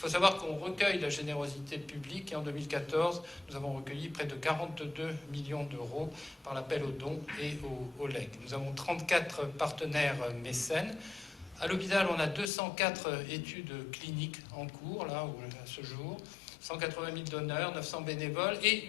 savoir qu'on recueille la générosité publique et en 2014, nous avons recueilli près de 42 millions d'euros par l'appel aux dons et aux legs. Nous avons 34 partenaires mécènes. À l'hôpital, on a 204 études cliniques en cours, là, à ce jour, 180 000 donneurs, 900 bénévoles et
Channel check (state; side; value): drops out; right; at 12.5 s